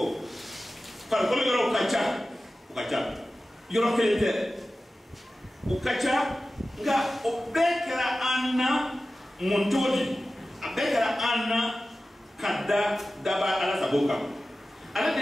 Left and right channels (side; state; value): both; normal; correlation 0.95